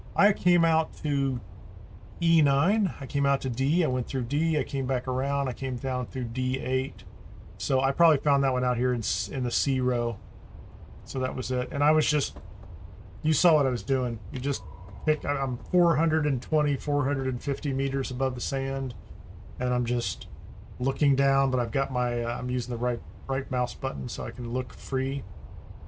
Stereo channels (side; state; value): both; identical; correlation 1.00